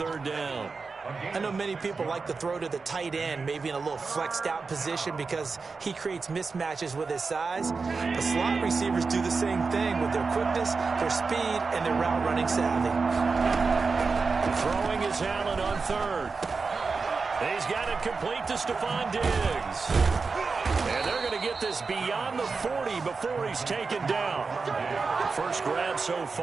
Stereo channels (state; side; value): quieter; left; 4.5 dB